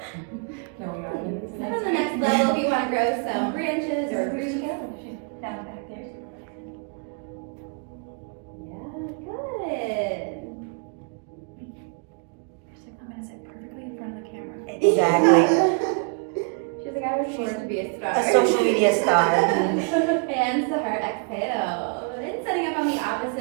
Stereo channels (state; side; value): quieter; left; 36.3 dB